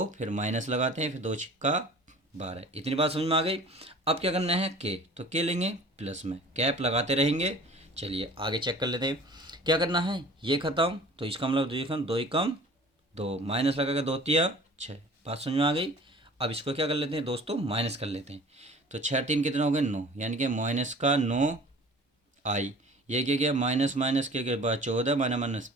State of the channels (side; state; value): both; normal; correlation 0.45